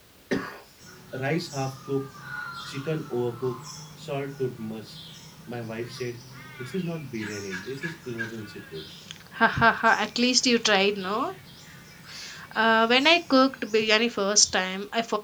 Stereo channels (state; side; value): identical; both; correlation 1.00